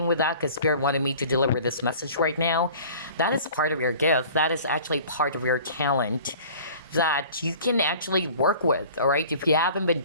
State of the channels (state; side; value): inverted; both; correlation -0.45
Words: with that because Spirit wanted me to deliver this message right now, that is part of your gift. That is actually part of your talent that you can actually work with, all right? If you haven't been